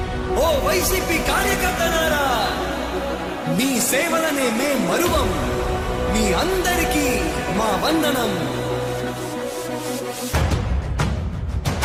ఓ వైసీపీ కార్యకర్తలారా మీ సేవలనే మే మరువం మీ మీ అందరికీ మా వందనం.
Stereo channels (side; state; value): both; identical; correlation 1.00